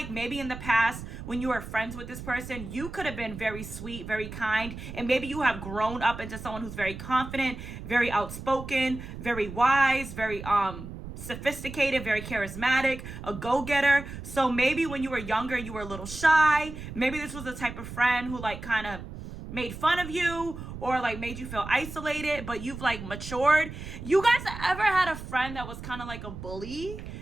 maybe in the past when you were friends with this person, you could have been very sweet, very kind, and maybe you have grown up into someone who's very confident, very outspoken, very wise, very sophisticated, very charismatic, a go-getter. So maybe when you were younger, you were a little shy. Maybe this was the type of friend who like kind of made fun of you or like made you feel isolated, but you've like matured. You guys ever had a friend that was kind of like a bully?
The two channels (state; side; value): noise; right; rumble, 10 dB below the sound